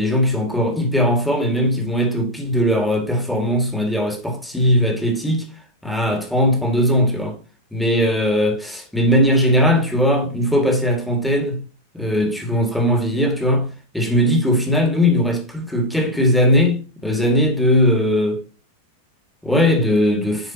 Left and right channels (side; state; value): both; normal; correlation 0.06